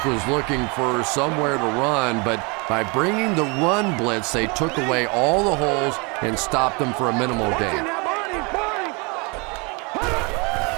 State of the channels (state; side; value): quieter; left; 30.2 dB